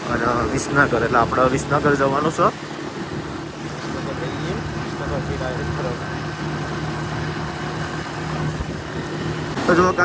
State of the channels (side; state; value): both; identical; correlation 1.00